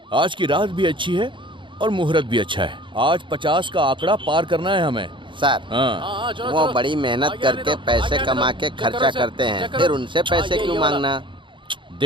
आज की रात भी अच्छी है और मुहूर्त भी अच्छा है। आज 50 का आंकड़ा पार करना है हमें। सर हाँ वो बड़ी मेहनत करके पैसे कमा के खर्चा करते हैं, फिर उनसे पैसे क्यों मांगना?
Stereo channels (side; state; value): left; late; 0.24 ms